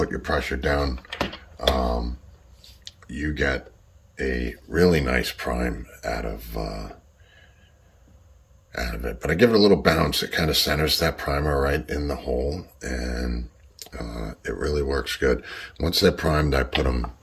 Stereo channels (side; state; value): both; identical; correlation 1.00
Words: your pressure down, you get a really nice prime out of it. But I give it a little bounce. It kind of centers that primer right in the hole, and it really works good. Once they're primed, I put them